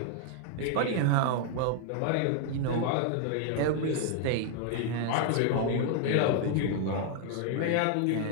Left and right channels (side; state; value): both; different; correlation 0.00